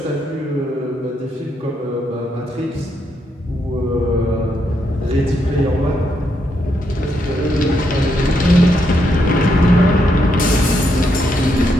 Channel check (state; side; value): normal; both; correlation 0.78